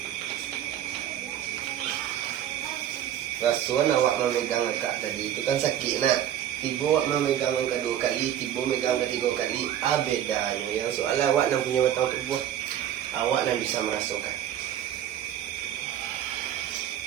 Rasul awak memegang kak tadi itu kan sakit nak. Tiba awak memegang yang kedua kali, tiba megang ketiga kali. Bedanya yang soal awak nak punya batang tubuh, awak nak bisa merasakan.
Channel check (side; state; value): left; quieter; 10.9 dB